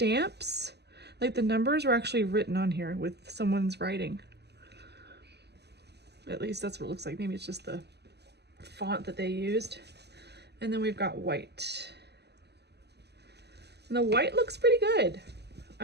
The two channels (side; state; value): left; late; 0.49 ms